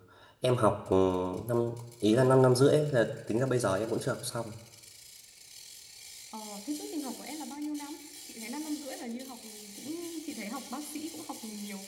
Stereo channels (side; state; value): both; identical; correlation 1.00